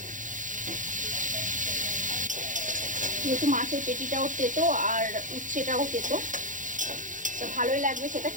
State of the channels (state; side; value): late; left; 0.37 ms